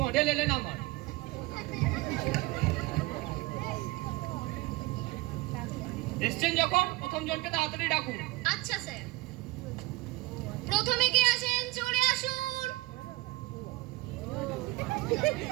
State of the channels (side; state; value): left; quieter; 20.9 dB